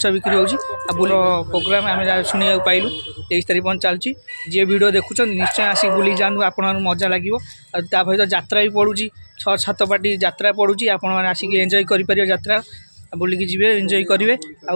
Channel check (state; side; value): inverted; both; correlation -1.00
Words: ବିକ୍ରି ହେଉଛି ଆଉ ବୁଲ ପ୍ରୋଗ୍ରାମ୍ ଆମେ ଶୁଣିବାକୁ ପାଇଲୁ 23 ତାରିଖ ପର୍ଯ୍ୟନ୍ତ ଚାଲୁଛି ଯିଏ ଭିଡ଼ିଓ ଦେଖୁଛନ୍ତି ନିଶ୍ଚୟ ଆସିକି ବୁଲିକି ଯାଆନ୍ତୁ ଆପଣମାନଙ୍କୁ ମଜା ଲାଗିବ ଆଉ ତା ସହିତ ଯାତ୍ରା ବି ପଡ଼ୁଛି 6-7 ପାର୍ଟି ଯାତ୍ରା ପଡ଼ୁଛି ଆପଣମାନେ ଆସିକି ଏନ୍ଜୟ କରିପାରିବେ ଯାତ୍ରା ବୁଲିକି ଯିବେ ଏନ୍ଜୟ କରିବେ